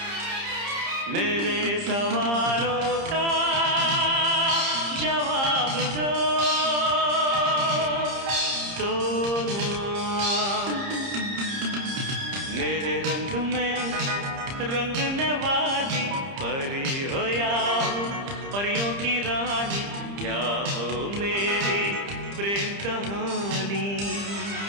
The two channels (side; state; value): left; late; 30 ms